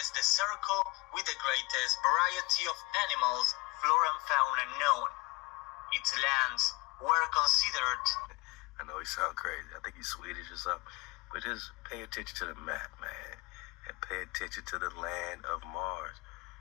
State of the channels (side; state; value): right; quieter; 25.4 dB